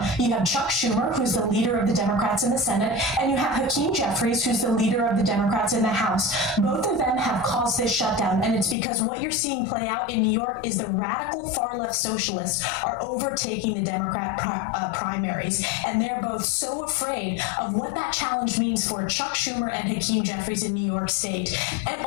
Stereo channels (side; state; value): right; drops out; at 8.8 s